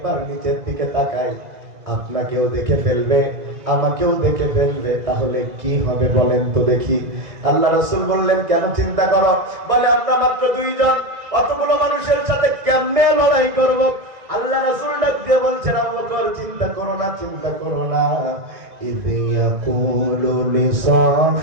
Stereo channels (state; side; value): late; left; 2.0 ms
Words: নিচের দিকে তাকায়, আপনাকেও দেখে ফেলবে, আমাকেও দেখে ফেলবে, তাহলে কি হবে বলেন তো দেখি? আল্লাহ রাসূল বললেন, কেন চিন্তা করো? বলে, আমরা মাত্র 2 জন, অতগুলো মানুষের সাথে কেমনে লড়াই করব? আল্লাহ রাসূল ডাক দিয়ে বলছেন, আবু বকর, চিন্তা করো না, চিন্তা করো না। إذ يقول